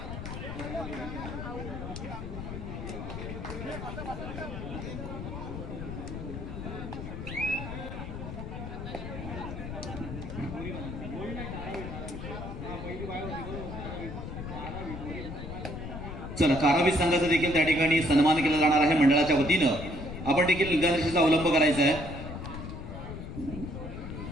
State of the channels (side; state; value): left; noise; rumble, 7 dB below the sound